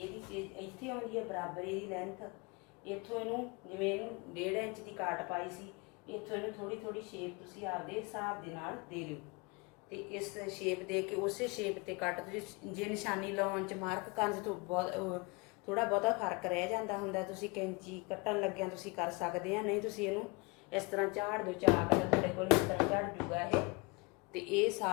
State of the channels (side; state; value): right; quieter; 28.2 dB